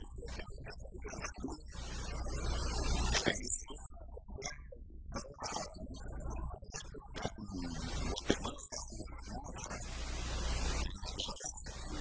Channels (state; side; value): identical; both; correlation 1.00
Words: Tiburcio Carías Andino, que en esa época también estaba ubico en Guatemala, Los Somoza, en Nicaragua,